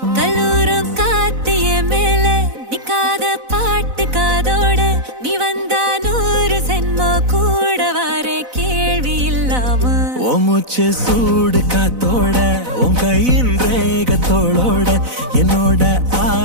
கல்லூரும் காத்திய மேல நிக்காத பாட்டு காதோட நீ வந்தா 100 சென்மோ கூட வர கேள்வி இல்லாம மூச்சு சூடு காத்தோட உன் கையின் ரேகத்தோளோட என்னோட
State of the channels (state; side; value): late; left; 4.0 ms